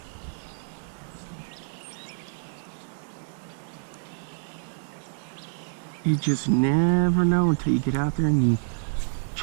You just never know until you get out there and you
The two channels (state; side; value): silent; left; digital silence